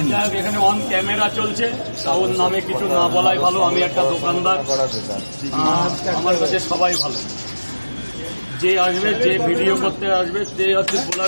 নিয়ে। এখানে অন ক্যামেরা চলছে, ওর নামে কিছু না বলাই ভালো। আমি একটা দোকানদার, আমার কাছে সবাই ভালো। যে আসবে, যে ভিডিও করতে আসবে, সে হচ্ছে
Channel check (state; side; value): inverted; both; correlation -1.00